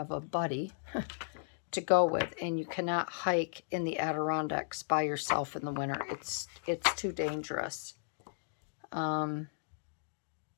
a buddy to go with. And you cannot hike in the Adirondacks by yourself in the winter. It's too dangerous.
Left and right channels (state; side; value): silent; right; digital silence